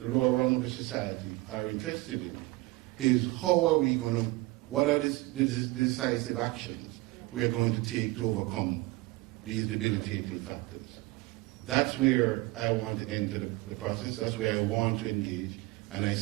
rung of the society, are interested in, is how are we going to, what are the decisive actions we are going to take to overcome these debilitating factors. That's where I want to enter the process. That's where I want to engage. And I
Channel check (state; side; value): quieter; left; 21.3 dB